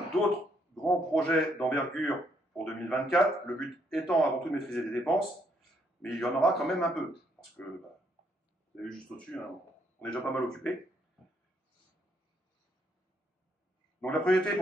d'autres grands projets d'envergure pour 2024, le but étant avant tout de maîtriser les dépenses, mais il y en aura quand même un peu, parce que, bah, vous avez vu juste au-dessus, hein, on est déjà pas mal occupé. Donc la priorité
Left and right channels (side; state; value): both; normal; correlation 0.72